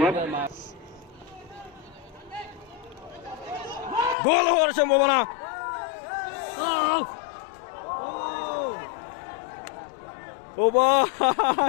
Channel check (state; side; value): drops out; right; at 4.2 s